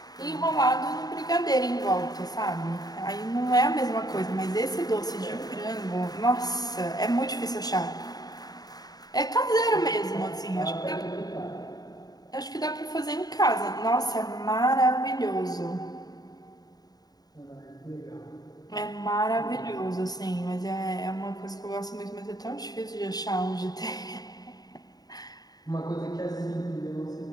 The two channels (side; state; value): right; late; 0.19 ms